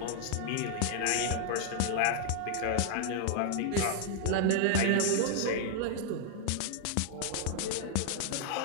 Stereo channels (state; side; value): different; both; correlation 0.00